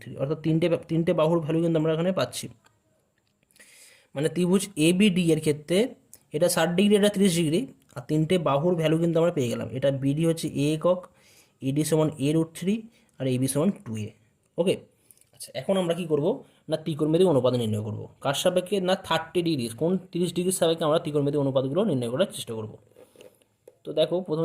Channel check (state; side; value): identical; both; correlation 1.00